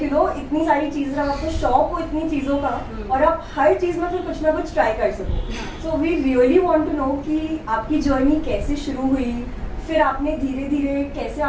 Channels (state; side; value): identical; both; correlation 1.00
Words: सारी चीज़ें जब आपको शौक हो इतनी चीज़ों का और आप हर चीज़ में फिर कुछ ना कुछ ट्राई कर सको. So we really want to know कि आपकी जर्नी कैसे शुरू हुई, फिर आपने धीरे धीरे कैसे